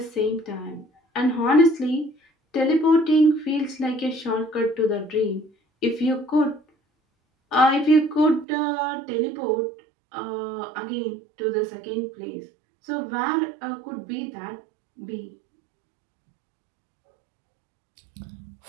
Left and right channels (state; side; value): drops out; left; at 8.5 s